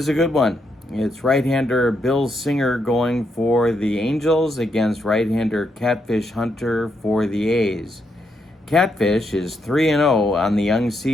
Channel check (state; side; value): normal; both; correlation 0.79